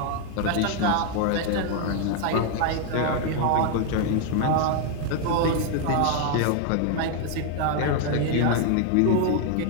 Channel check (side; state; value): both; different; correlation 0.00